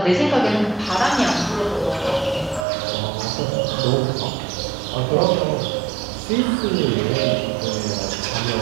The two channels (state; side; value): drops out; left; at 2.7 s